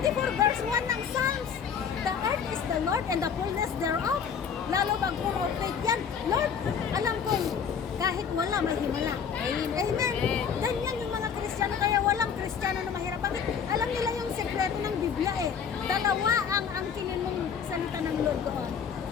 verse 1 ng Psalms. The earth is the Lord and the fullness thereof. Lalo pag puro fake yan. Lord, alam ko, kahit wala, may himala. Amen. Ganyan yung mga Kristiyano, kaya walang Kristiyano na mahirap. Bakit? Alam nila yung sekreto ng Biblia eh. Dalawa ang angkinin mong salita ng Lord doon.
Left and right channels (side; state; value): right; quieter; 7.0 dB